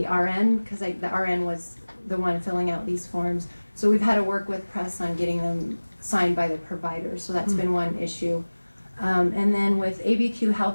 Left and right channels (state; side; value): inverted; both; correlation -1.00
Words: RN because the RN was the one filling out these forms. So we've had to work with Press on getting them signed by the provider. So that's been one issue. And then with ABQ